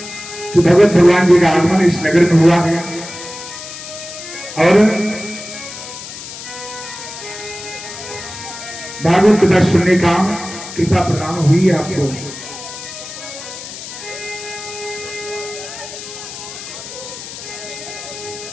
कि भगवत भगवान जी का आगमन इस नगर में हुआ है और भागवत कथा सुनने का कृपा प्रदान हुई है आपको।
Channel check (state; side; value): noise; left; hiss, 11 dB below the sound